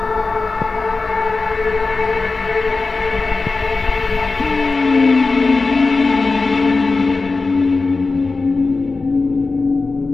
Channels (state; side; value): quieter; right; 3.8 dB